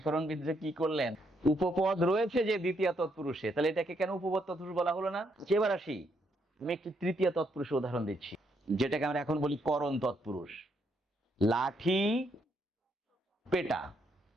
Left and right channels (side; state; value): both; normal; correlation 0.75